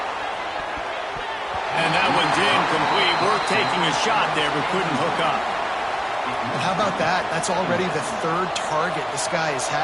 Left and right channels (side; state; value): both; identical; correlation 1.00